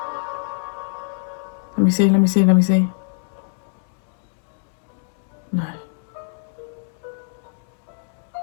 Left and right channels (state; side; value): silent; right; digital silence